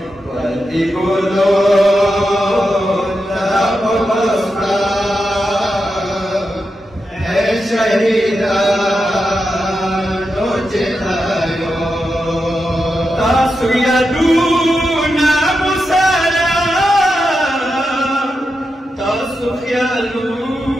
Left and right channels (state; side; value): normal; both; correlation 0.88